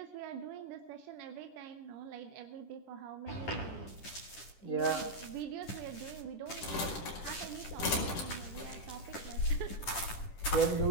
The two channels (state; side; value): late; right; 10 ms